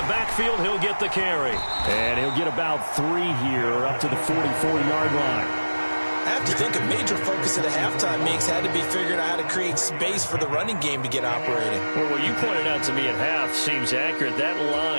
backfield, he'll get the carry. And he'll get about 3 here, up to the 44-yard line. I have to think a major focus of the halftime mix had to be figuring out how to create space for the running game to get operating. Well, what you pointed out to me at half seems accurate. That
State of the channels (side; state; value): both; inverted; correlation -1.00